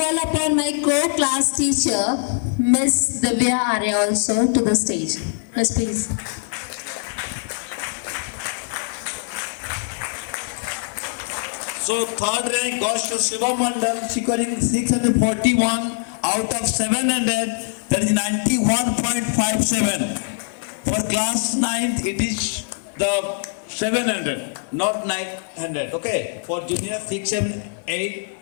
upon my co-class teacher, Miss Divya Arya, also to the stage. Miss, please. So third rank goes to Shubham Mandal, scoring 641 out of 700, that is 91.57. For class 9th, it is the 700, not 900. Okay, for junior 6 and 8,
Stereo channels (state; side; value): silent; right; 64 dB below the other